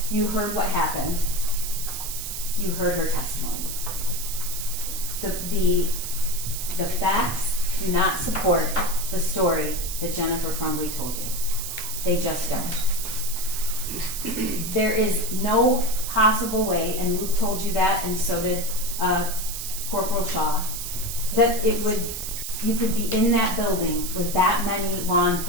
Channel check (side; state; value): right; noise; hiss, 6 dB below the sound